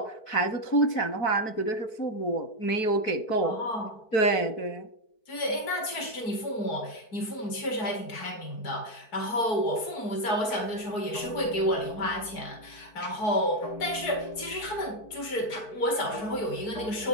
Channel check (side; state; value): right; late; 4.5 ms